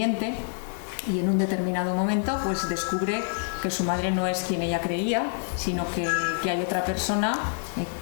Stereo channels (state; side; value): silent; right; digital silence